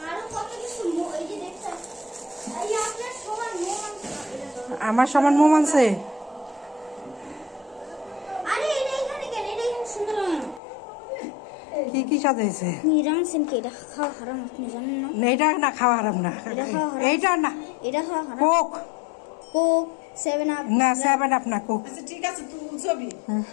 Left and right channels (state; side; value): drops out; right; at 10.6 s